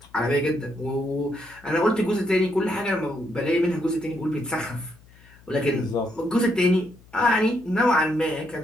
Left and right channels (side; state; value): left; noise; hum, 26 dB below the sound